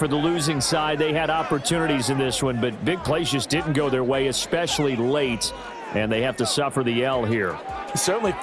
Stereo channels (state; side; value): identical; both; correlation 1.00